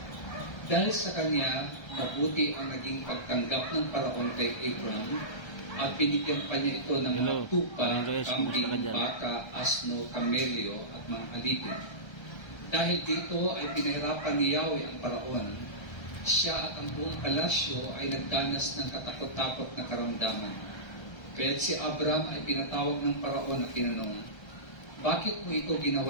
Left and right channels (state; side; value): late; right; 1.3 ms